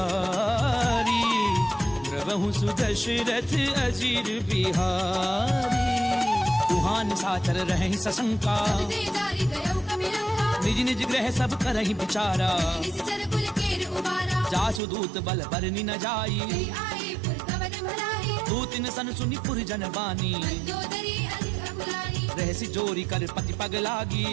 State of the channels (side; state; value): left; drops out; at 14.8 s